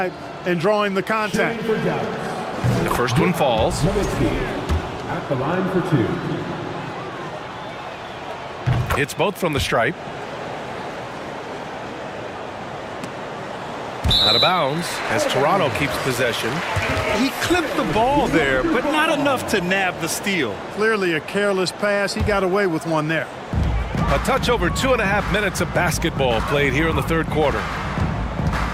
and drawing the contact. The first one falls. Nowitzki at the line for 2. It's both from the stripe. Out of bounds as Toronto keeps possession. He clipped the ball there, but not enough to nab the steal. Clearly a careless pass. He got away with one there. A touch over 2.5 minutes of basketball played here in the third quarter.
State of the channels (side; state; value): both; identical; correlation 1.00